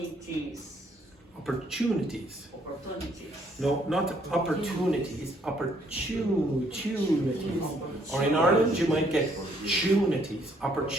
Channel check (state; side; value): normal; both; correlation 0.67